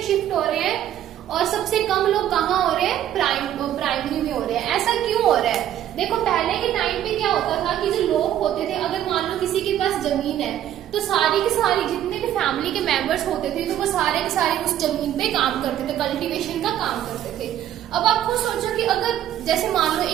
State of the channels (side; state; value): left; quieter; 11.5 dB